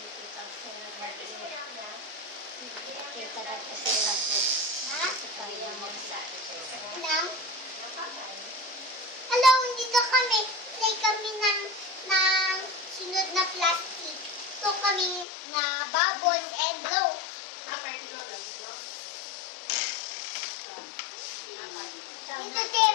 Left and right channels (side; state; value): right; drops out; at 15.2 s